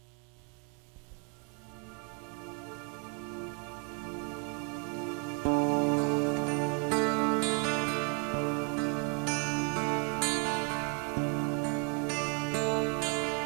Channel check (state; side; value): quieter; left; 36.0 dB